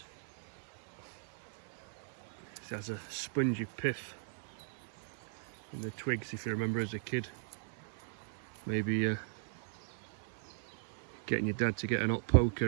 It has a spongy pith in the twigs, if you remember as a kid. Maybe getting your dad to get an hot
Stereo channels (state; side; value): silent; left; 52 dB below the other